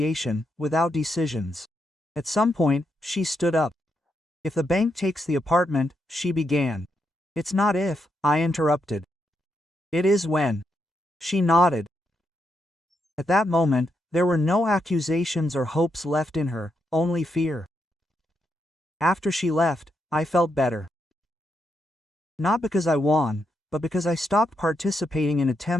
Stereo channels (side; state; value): both; normal; correlation 0.81